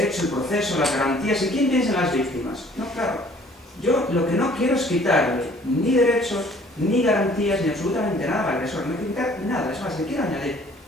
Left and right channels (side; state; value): both; normal; correlation 0.56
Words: el proceso, las garantías, ¿y quién piensa en las víctimas? No, claro. Yo lo que no quiero es quitarle ni derechos, ni garantías, ni absolutamente nada al agresor. No quiero quitar nada, es más, le quiero añadir.